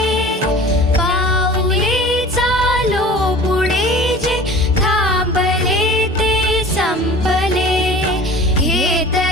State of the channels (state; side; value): normal; both; correlation 0.41